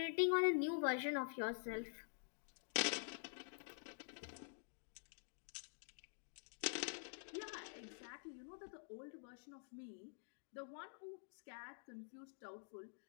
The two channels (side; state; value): right; silent; digital silence